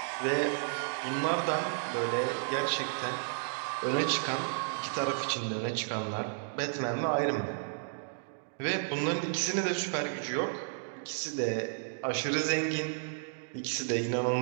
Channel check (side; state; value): left; silent; digital silence